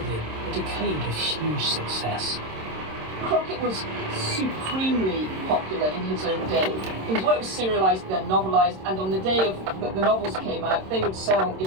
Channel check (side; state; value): left; late; 26 ms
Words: a decade of huge success. Crockett was supremely popular in his own day. His work was serialised, then novelised, and on the day that the novels came out, they would sell